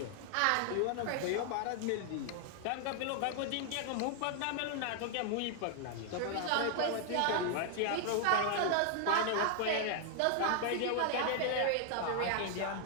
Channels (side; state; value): both; different; correlation 0.00